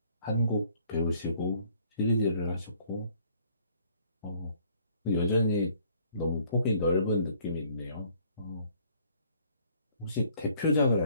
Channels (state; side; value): inverted; both; correlation -0.61